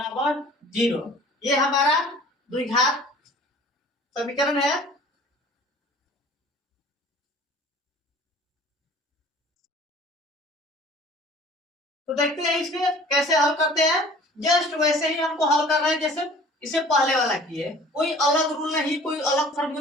0। ये हमारा द्विघात समीकरण है। तो देखते हैं इसमें कैसे हल करते हैं। जस्ट वैसे ही हमको हल करना है जैसे इसे पहले वाला किए, कोई अलग रूल नहीं, कोई अलग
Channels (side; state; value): both; normal; correlation 0.48